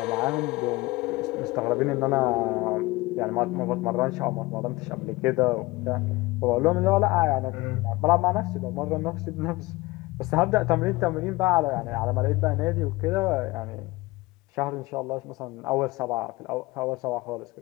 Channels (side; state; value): right; quieter; 21.3 dB